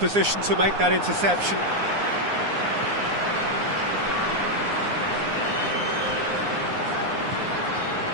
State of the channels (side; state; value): left; late; 9.7 ms